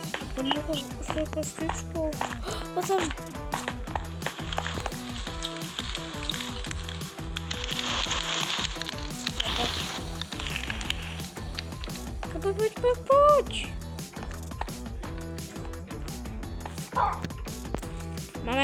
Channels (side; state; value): both; identical; correlation 1.00